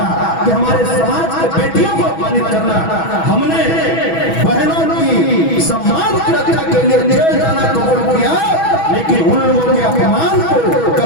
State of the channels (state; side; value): late; right; 6.1 ms